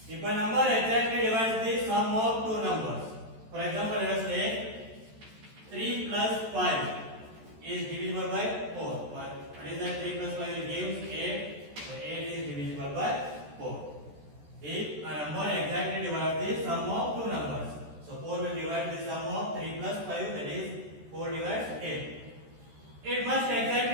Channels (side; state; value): left; late; 14 ms